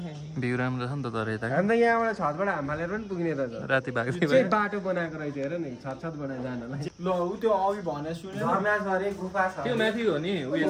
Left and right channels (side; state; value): both; identical; correlation 1.00